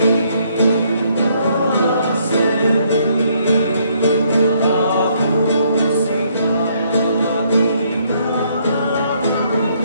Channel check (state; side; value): inverted; both; correlation -0.69